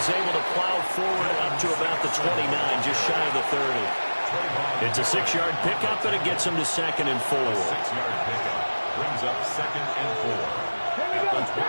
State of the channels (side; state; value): both; inverted; correlation -1.00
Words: able to plow forward up to about the 29, just shy of the 30. It's a 6-yard pickup, and it gets him to 2nd and 4. 6-yard pickup brings up 2nd and 4 at the